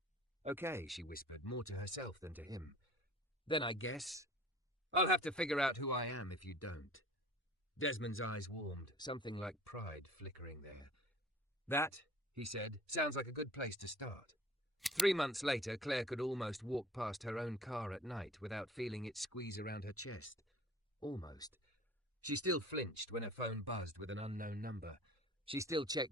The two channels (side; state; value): both; normal; correlation 0.46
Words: "Okay," she whispered, more to herself than to him. "Then I guess I'll have to figure out who I am if you don't." Desmond's eyes warmed, something like pride flickering there. "That," he said, "sounds like a good place to start." 3 months later, Claire could almost walk past her own car at night without feeling it squeeze around her chest. Almost. She still flinched when her phone buzzed with an unknown number. She still